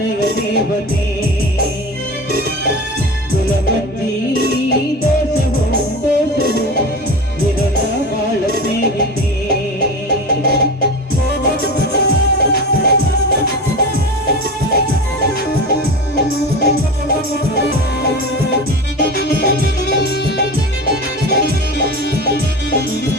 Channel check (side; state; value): both; normal; correlation 0.29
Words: ದೇವತೆ, ಗುಲಮಂಜಿ ದೋಷವೋ ದೋಷವೋ ನಿರನ ಬಾಳ ಸ್ನೇಹಿತೆ.